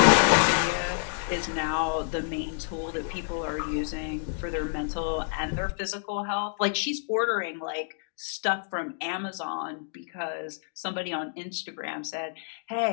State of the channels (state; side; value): silent; right; digital silence